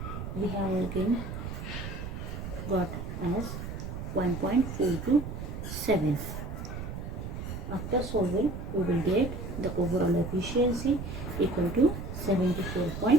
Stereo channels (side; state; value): right; noise; rumble, 7 dB below the sound